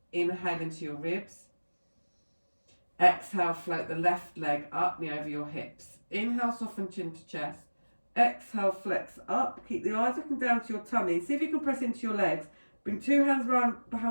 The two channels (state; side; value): inverted; both; correlation -1.00